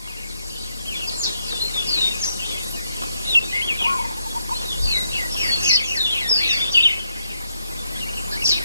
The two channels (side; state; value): both; inverted; correlation -0.77